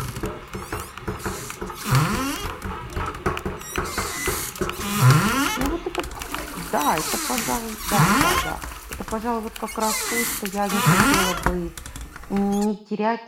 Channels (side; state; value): both; identical; correlation 1.00